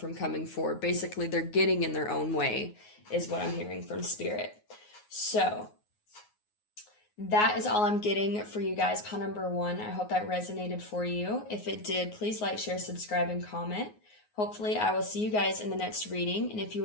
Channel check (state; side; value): late; right; 9.5 ms